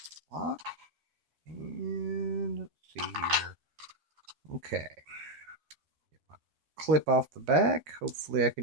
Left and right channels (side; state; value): left; late; 13 ms